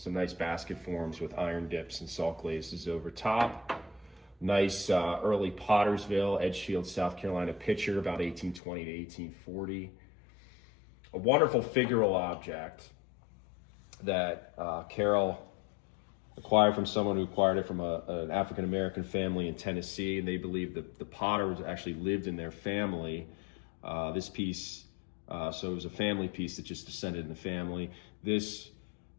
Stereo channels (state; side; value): drops out; right; at 8.6 s